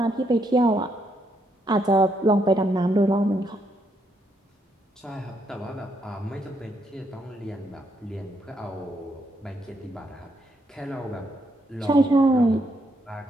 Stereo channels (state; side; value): normal; both; correlation 0.76